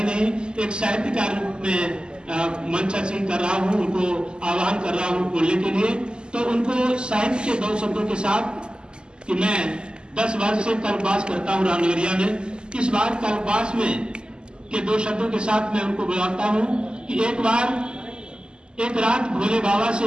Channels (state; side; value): late; left; 0.048 ms